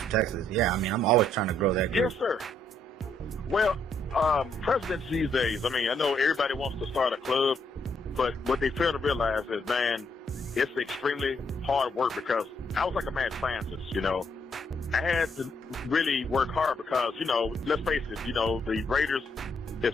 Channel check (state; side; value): normal; both; correlation 0.73